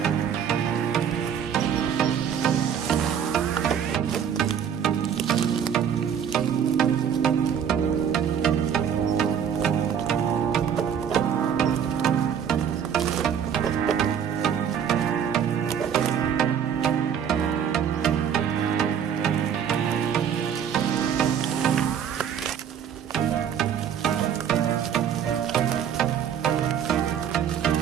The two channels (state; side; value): quieter; left; 8.2 dB